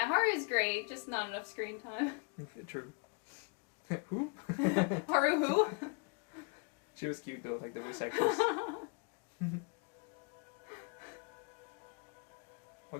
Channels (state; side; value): quieter; right; 35.3 dB